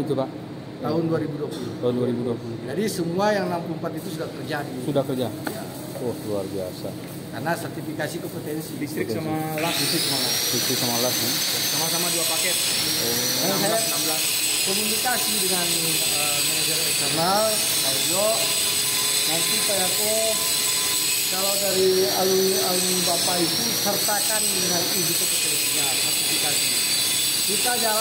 itu Pak? Tahun 2020. Tahun 2020. Jadi semua yang 64 itu sudah terjadi. Sudah kerja? Ya. Oh, luar biasa. Karena sertifikasi kompetensi. Distrik sama LAS. Distrik sama LAS nih. Sama-sama 2 paket. Karena saya 16. komunikasi dengan manajer eksternal, Pak Ujo. Nanti Pak Yako, kalau dari alumni Bapak itu sertakan dengan izin kompetensinya, sertifikasi. Kita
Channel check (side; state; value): both; identical; correlation 1.00